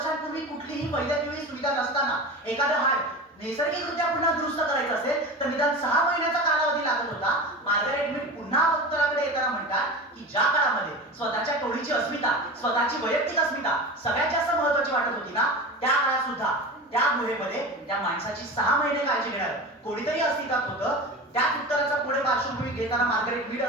कुठलीही वैद्यकीय सुविधा नसताना एखादं हाड नैसर्गिकरित्या पुन्हा दुरुस्त करायचं असेल तर निदान 6 महिन्याचा कालावधी लागत होता. मार्गारेट मीड पुन्हा उत्तराकडे येताना म्हणतात की ज्या काळामध्ये स्वतःच्या टोळीची अस्मिता, स्वतःची वैयक्तिक अस्मिता सगळ्यात जास्त महत्त्वाची वाटत होती ना त्या काळात सुद्धा त्या गुहेमध्ये त्या माणसाची 6 महिने काळजी घेणार कोणीतरी अस्तित्वात होतं. त्या उत्तराचा पुढे पार्श्वभूमी घेताना मार्गारेट मीड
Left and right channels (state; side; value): normal; both; correlation 0.30